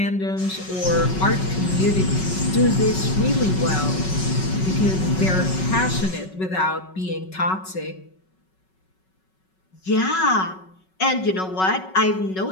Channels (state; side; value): late; right; 5.4 ms